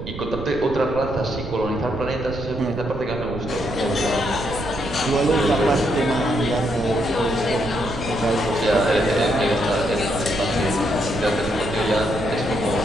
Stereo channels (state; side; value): noise; right; rumble, 10 dB below the sound